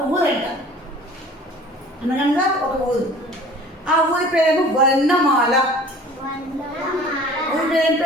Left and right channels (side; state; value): both; normal; correlation 0.47